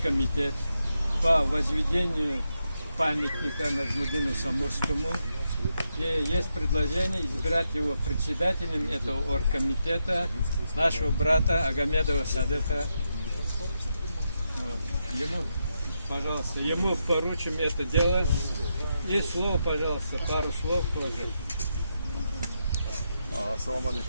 по возведению памятника Наджмуддину Самурскому. И есть предложение избрать его председателем этого оргкомитета, нашего брата Агамедова Садыка. Вот. Ему, пожалуйста, ему поручим это дело. И слово, пожалуйста, пару слов тоже. Ассаламу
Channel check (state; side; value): inverted; both; correlation -0.84